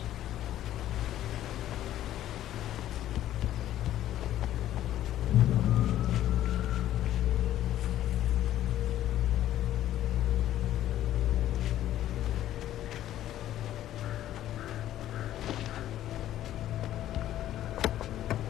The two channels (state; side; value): quieter; right; 12.7 dB